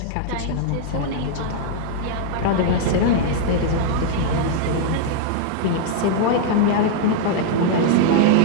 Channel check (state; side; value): different; both; correlation -0.01